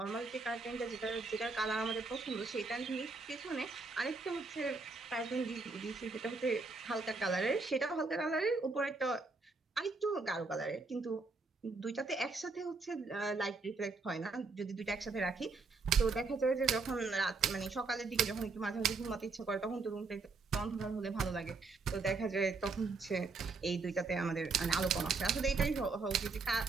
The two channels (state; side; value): quieter; left; 4.0 dB